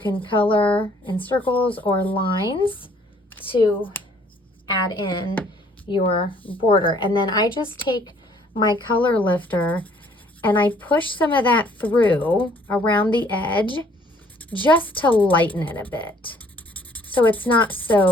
color in circles or lines to add in your border. And then I just take my color lifter and I push some of that through around the edge just to lighten it a bit, so it's not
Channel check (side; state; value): both; normal; correlation 0.61